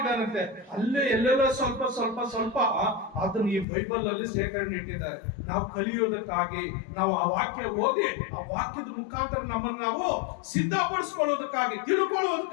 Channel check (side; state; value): right; drops out; at 3.7 s